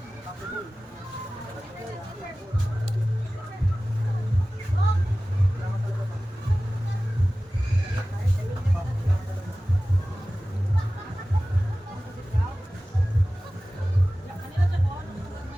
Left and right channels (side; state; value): both; normal; correlation 0.97